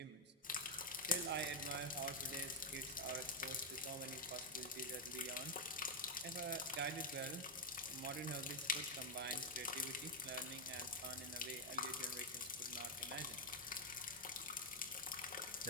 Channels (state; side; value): normal; both; correlation 0.01